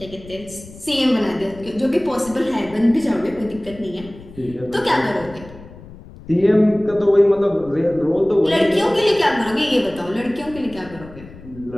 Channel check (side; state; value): left; noise; rumble, 18 dB below the sound